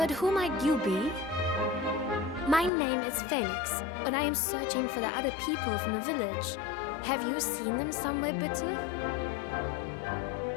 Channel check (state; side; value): drops out; right; at 2.7 s